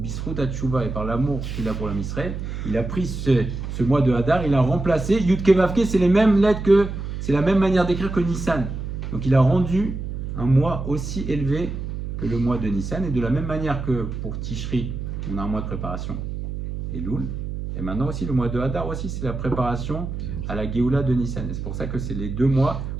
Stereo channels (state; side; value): noise; right; hum, 6 dB below the sound